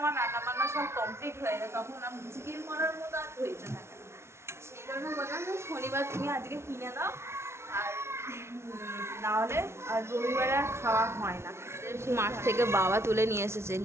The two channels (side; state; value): left; late; 0.13 ms